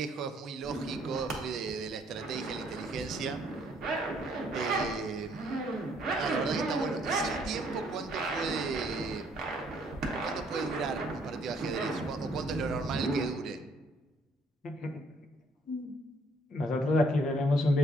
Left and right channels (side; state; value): both; normal; correlation 0.65